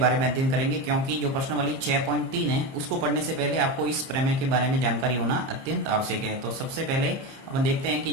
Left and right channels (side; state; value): left; late; 30 ms